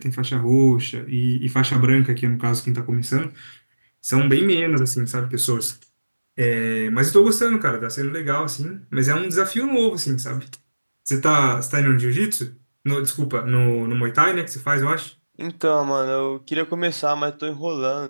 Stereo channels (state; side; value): inverted; both; correlation -1.00